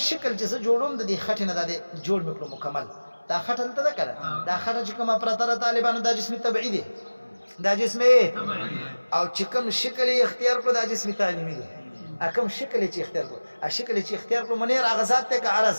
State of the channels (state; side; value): inverted; both; correlation -1.00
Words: چې زه جوړوم د دې خټې نه د جوړ مکلو مکمل دا خټه ته ده کړه دا خټه چې کومه پرته طالبانو دا جسم طبيعي دی دا جسم او چې کوم شکل اختیار کړو دا جسم تعلیمي دی کوم شکل چې اختیار کړو شکل چې اختیار کړو منیر اغزاد ته